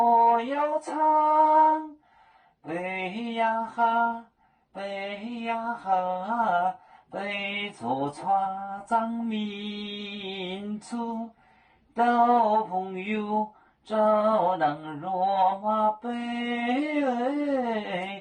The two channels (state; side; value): identical; both; correlation 1.00